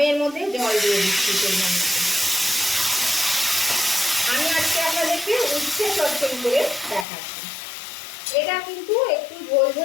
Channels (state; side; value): drops out; right; at 7.1 s